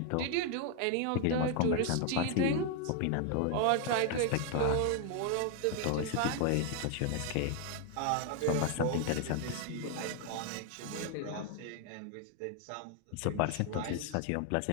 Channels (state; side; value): different; both; correlation 0.00